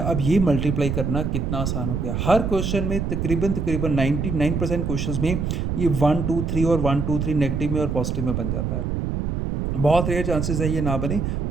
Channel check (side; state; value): right; noise; rumble, 1 dB below the sound